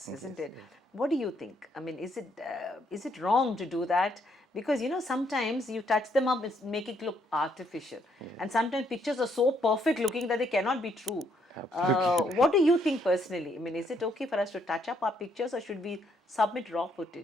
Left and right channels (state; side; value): normal; both; correlation 0.71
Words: isn't it? What do you think? I mean, is it wrong to do that? Because sometimes you touch them up and make it look artificial, and sometimes pictures are so perfect looking that they cannot be true. What do you think personally? I mean, is it okay for us to touch up our pictures, or should we submit raw